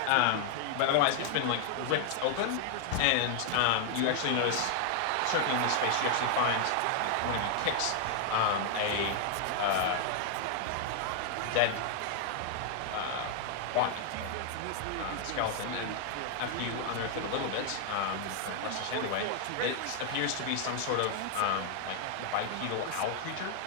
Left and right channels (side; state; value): both; different; correlation 0.00